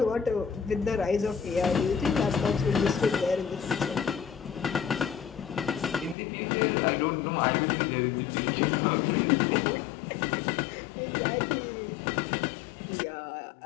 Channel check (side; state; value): right; drops out; at 6.2 s